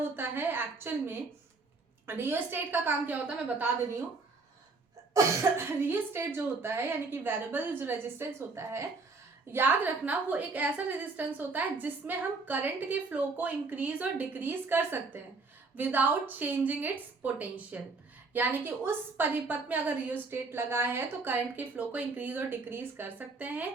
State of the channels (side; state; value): left; quieter; 3.9 dB